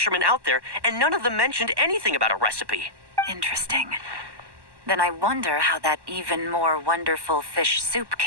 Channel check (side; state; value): left; late; 1.1 ms